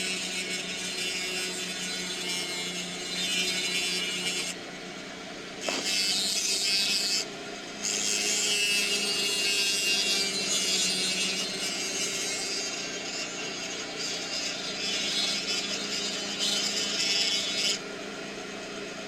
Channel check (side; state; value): left; noise; rumble, 27 dB below the sound